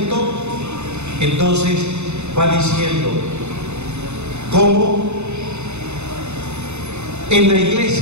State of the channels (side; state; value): left; late; 0.82 ms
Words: Entonces va diciendo, ¿cómo? En la